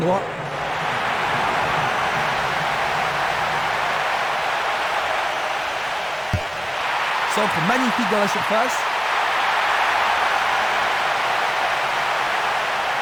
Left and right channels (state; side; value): identical; both; correlation 1.00